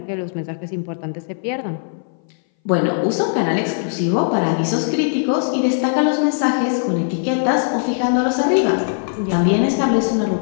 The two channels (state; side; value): silent; right; 60 dB below the other